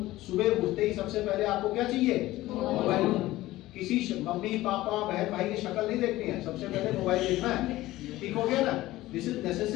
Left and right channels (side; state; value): right; quieter; 16.8 dB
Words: सुबह उठते ही सबसे पहले आपको क्या चाहिए, मोबाइल फोन। किसी मम्मी पापा बहन भाई की शक्ल नहीं देखनी है, सबसे पहले मोबाइल देखना है, ठीक हो गया ना। This is